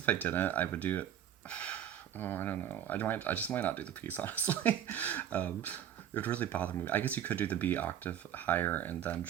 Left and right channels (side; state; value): left; quieter; 10.1 dB